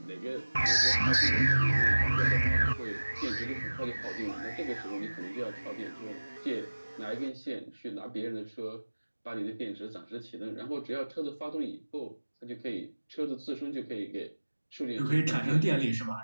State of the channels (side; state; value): both; inverted; correlation -1.00